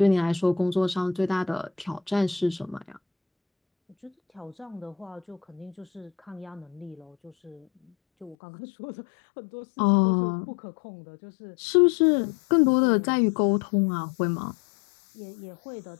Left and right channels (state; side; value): drops out; right; at 8.3 s